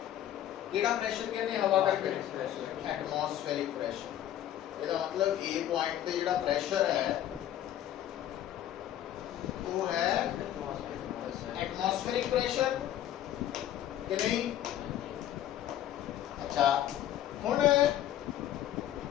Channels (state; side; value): quieter; right; 11.8 dB